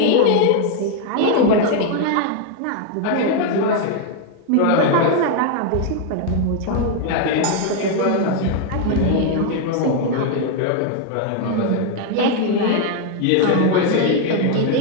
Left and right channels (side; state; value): both; different; correlation 0.00